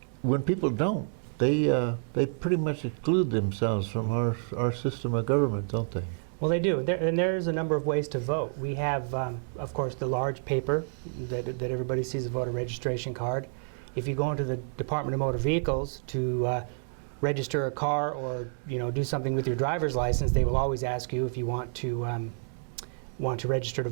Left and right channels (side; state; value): left; silent; digital silence